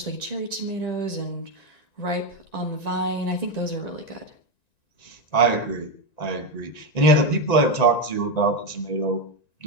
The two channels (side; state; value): right; late; 1.9 ms